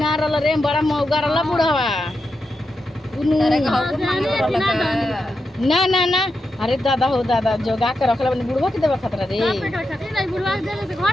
रहल रे बड़ा मौगा रहल बुढ़वा तारे घाव मांगे ना ना ना अरे दादा हो दादा जोगा के रखले बनी बुढ़वा के देवे खतरा रे बुढ़वा देले तो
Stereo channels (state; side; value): normal; both; correlation 0.87